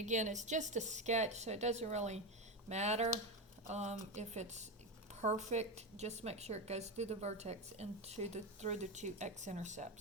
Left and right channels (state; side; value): normal; both; correlation 0.15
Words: it's just a sketch, so it doesn't really matter if it's perfect. Just make sure it goes through the vertex and through the 2